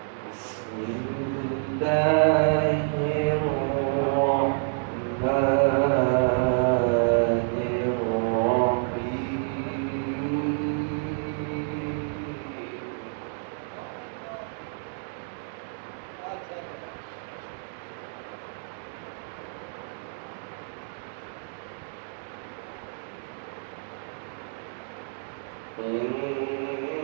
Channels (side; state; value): left; silent; digital silence